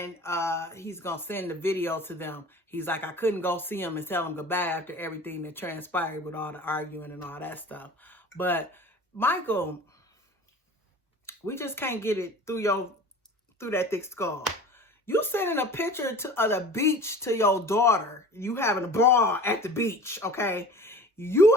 he's going to send the video to them. He's like, I couldn't go see him and tell him goodbye after everything that transpired with all the arguing and all that stuff. But Michael, we just can't get it through that thick skull. You sending a picture of the beach to your daughter. You having a ball at the beach, okay?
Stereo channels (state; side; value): normal; both; correlation 0.40